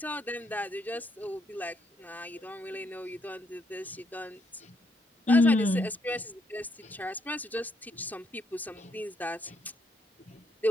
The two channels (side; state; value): both; normal; correlation 0.74